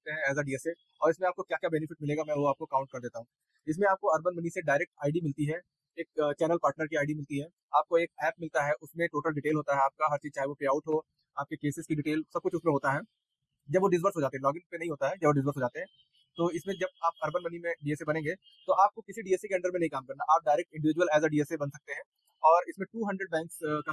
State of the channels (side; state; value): both; identical; correlation 1.00